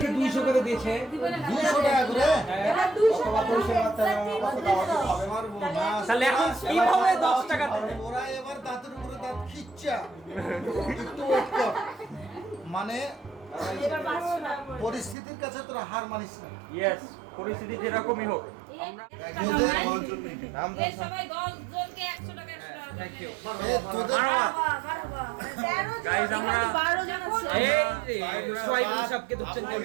200 করে দিয়েছে। 200 টাকা করে এবার 200 তাহলে এখন কিভাবে 10 টাকা দেবে? ওরা এবার দাঁতের উপরে দাঁত খিচ্চা একটু ওয়েট কর। মানে পরিস্থিতির কাছে তোরা হার মানিস না। ইয়েস, পরিস্থিতি যেরকমই হোক। সবাই 10 জনকে 100 টাকা 100 টাকা। Thank you. তোদের গাইস, আমরা সবকে ধরছেন কেন?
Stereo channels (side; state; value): left; drops out; at 15.2 s